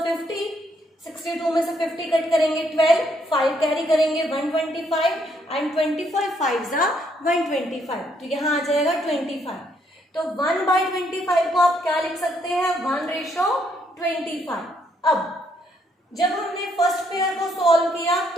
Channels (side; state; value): both; normal; correlation 0.71